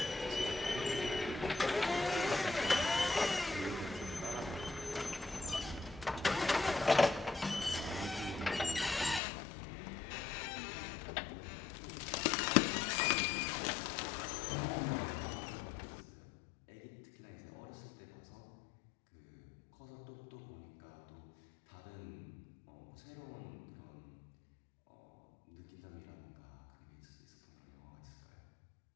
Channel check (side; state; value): right; drops out; at 9.2 s